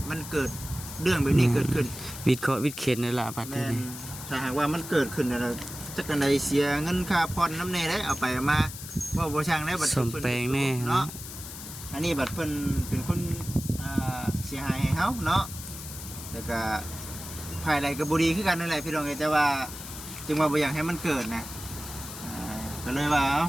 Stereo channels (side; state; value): left; noise; hiss, 11 dB below the sound